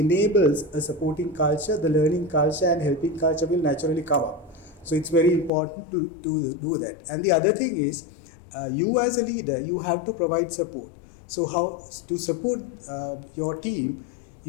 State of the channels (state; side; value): drops out; right; at 5.5 s